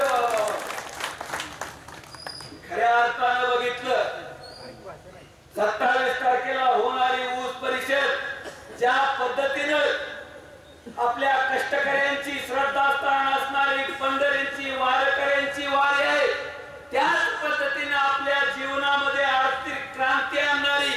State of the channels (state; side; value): identical; both; correlation 1.00